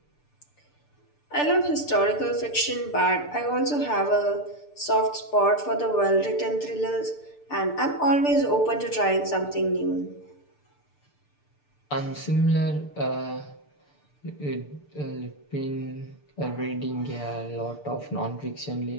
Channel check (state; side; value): late; right; 6.8 ms